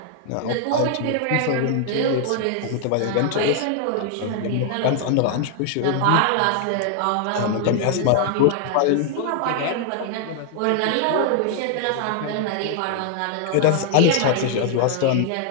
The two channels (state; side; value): different; both; correlation 0.00